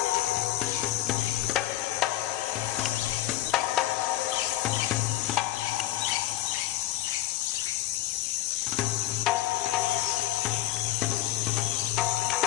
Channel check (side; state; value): right; quieter; 14.5 dB